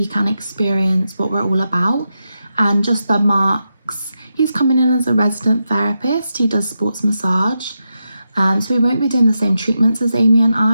can experience what we're all about. And just the marks, he's coming in as a resident therapist, he does sports massage, so we won't be doing the same treatments as Amy and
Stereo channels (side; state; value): both; inverted; correlation -0.87